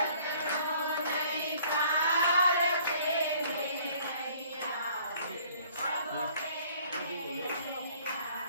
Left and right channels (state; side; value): inverted; both; correlation -0.57